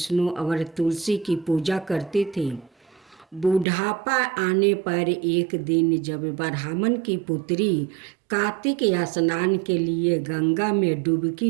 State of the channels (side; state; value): left; drops out; at 3.7 s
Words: और तुलसी की पूजा करती थी। बुढ़ापा आने पर एक दिन जब ब्राह्मण की पुत्री कार्तिक स्नान के लिए गंगा में